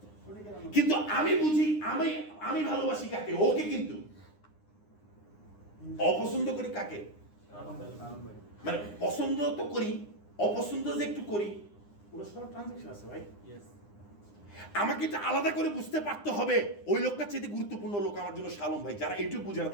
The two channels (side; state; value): right; late; 9.8 ms